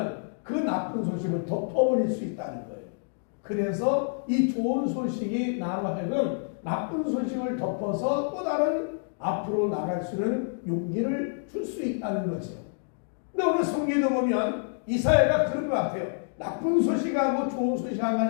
그 나쁜 소식을 덮어버릴 수 있다는 거예요. 그래서 이 좋은 소식이 나와 하여금 나쁜 소식을 덮어서 또 다른 앞으로 나갈 수 있는 용기를 줄 수 있다는 거죠. 근데 오늘 성경에 보면 이사야가 그런 것 같아요. 나쁜 소식하고 좋은 소식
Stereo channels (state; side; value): silent; right; digital silence